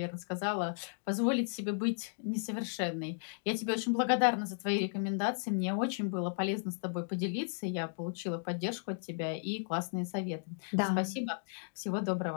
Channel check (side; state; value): right; silent; digital silence